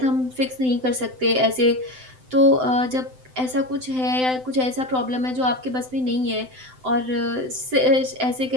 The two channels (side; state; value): left; late; 7.8 ms